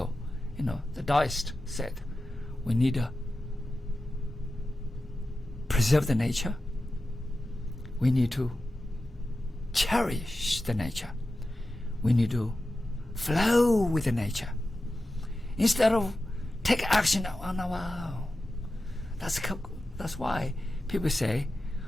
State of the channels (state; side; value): normal; both; correlation 0.93